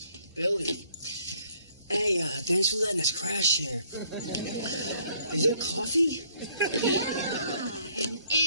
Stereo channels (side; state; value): both; inverted; correlation -0.64